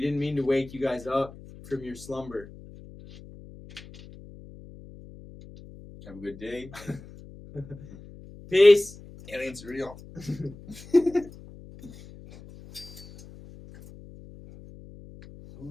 mean to wake you guys up from your slumber. Have a good day. Peace. Aliens are real.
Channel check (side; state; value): left; noise; hum, 18 dB below the sound